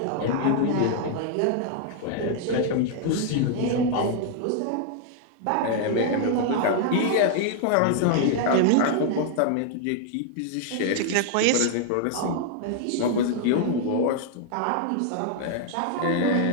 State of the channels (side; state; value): both; different; correlation 0.00